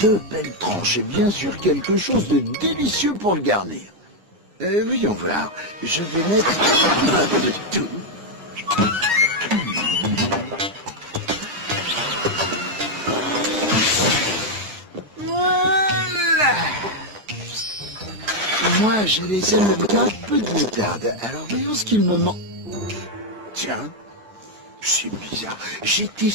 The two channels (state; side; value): late; left; 9.9 ms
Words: belles tranches et bien sûr quelque chose de délicieux pour le garnir. Voyons voir, je vais mettre un peu de tout. Voilà. Moi, je les aime avec un peu de moutarde. Alors voyons ce qu'il me manque. Tiens, c'est bizarre. J'étais